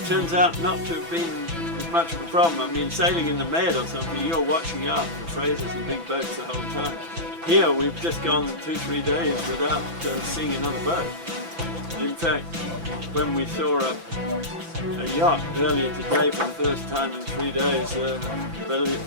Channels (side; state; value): left; late; 6.0 ms